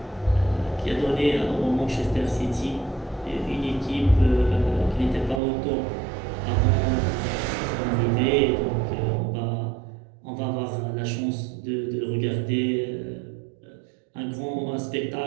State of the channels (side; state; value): left; drops out; at 5.4 s